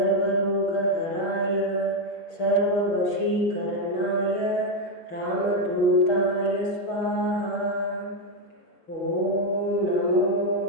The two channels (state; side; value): late; right; 6.3 ms